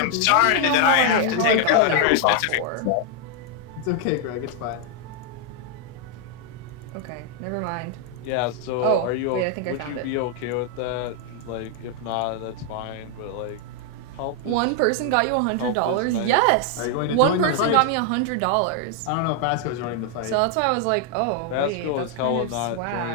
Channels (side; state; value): both; different; correlation 0.00